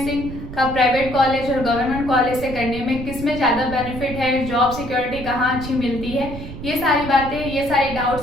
का प्राइवेट कॉलेज और गवर्नमेंट कॉलेज से करने में किस में ज़्यादा बेनिफिट है, जॉब सिक्योरिटी कहाँ अच्छी मिलती है, ये सारी बातें, ये सारे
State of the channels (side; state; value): right; noise; rumble, 10 dB below the sound